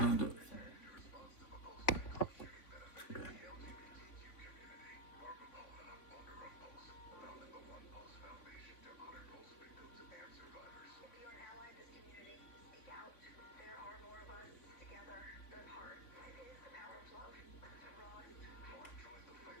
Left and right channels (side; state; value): right; late; 3.5 ms